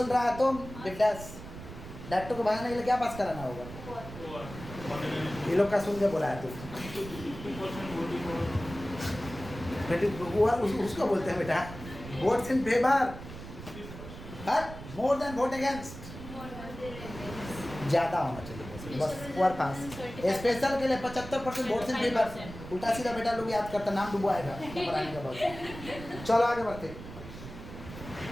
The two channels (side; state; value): right; noise; rumble, 12 dB below the sound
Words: रहा है तुम बिट्टास? डायरेक्टर को भगाने के लिए क्या पास कराना होगा? ये लोग का सुन के बोला है तू उसको बोलते हैं बेटा votes in favour but more than vote against. ज़्यादा होना चाहिए, बस और पास। स्पेशल के लिए 75% बोर्ड से पेपर। उल्टा सीधा बेटा लोग याद करता, नाम डूबो आएगा पढ़ाने के बाद। चलो आगे बढ़ते।